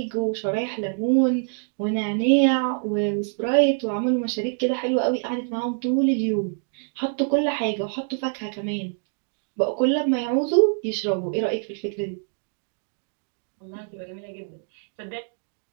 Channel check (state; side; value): silent; left; digital silence